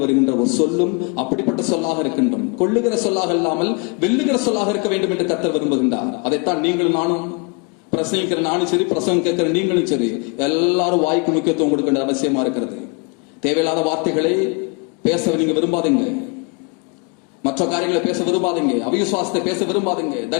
வருகின்ற ஒரு சொல்லும் அப்படிப்பட்ட சொல்லாக இருக்கின்றோம். கொள்ளுகிற சொல்லாக இல்லாமல் வெல்லுகிற சொல்லாக இருக்க வேண்டும் என்று கர்த்தர் விரும்புகின்றார். அதைத்தான் நீங்களும் நானும், பிரசங்கிக்கிற நானும் சரி, பிரசங்கம் கேட்கிற நீங்களும் சரி, எல்லாரும் வாய்க்கு முக்கியத்துவம் கொடுக்க வேண்டிய அவசியமா இருக்கிறது. தேவையில்லாத வார்த்தைகளை பேச நீங்க விரும்பாதீங்க, மற்ற காரியங்களை பேச விரும்பாதீங்க, அவிசுவாசத்தை பேச விரும்பாதீங்க,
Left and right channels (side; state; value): right; quieter; 32.1 dB